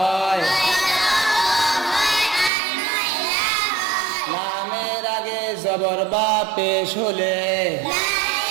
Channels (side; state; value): left; drops out; at 2.5 s